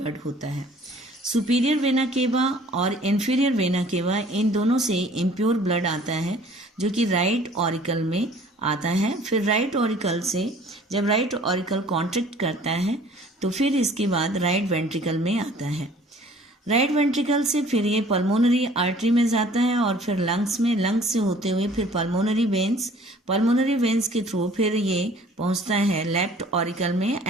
होता है। सुपीरियर वेना केवा और इन्फीरियर वेना केवा, इन दोनों से इम्प्योर ब्लड आता है जो कि राइट ऑरिकल में आता है। फिर राइट ऑरिकल से जब राइट ऑरिकल कॉन्ट्रैक्ट करता है तो फिर इसके बाद राइट वेंट्रिकल में आता है। राइट वेंट्रिकल से फिर ये पल्मोनरी आर्टरी में जाता है और फिर लंग्स में, लंग्स से होते हुए फिर पल्मोनरी वेन्स के थ्रू फिर ये पहुंचता है लेफ्ट ऑरिकल में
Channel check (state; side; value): normal; both; correlation 0.53